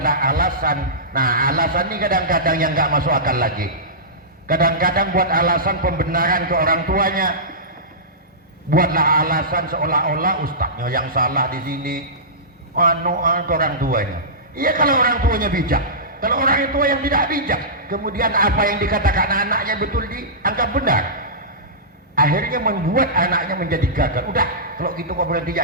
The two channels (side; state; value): both; normal; correlation -0.19